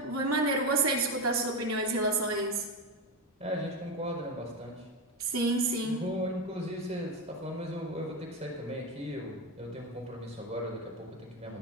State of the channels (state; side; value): normal; both; correlation 0.14